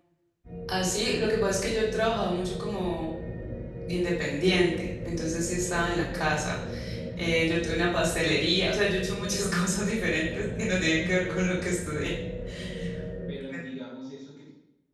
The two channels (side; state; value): both; identical; correlation 1.00